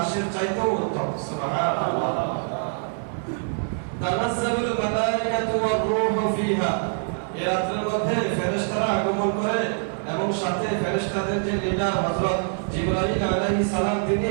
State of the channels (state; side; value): silent; left; 59 dB below the other